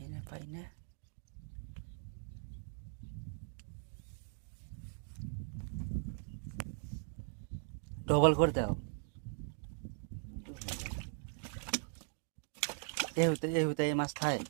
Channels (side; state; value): left; silent; digital silence